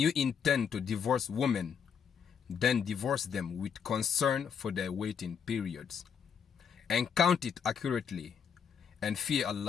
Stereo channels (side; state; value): right; quieter; 7.2 dB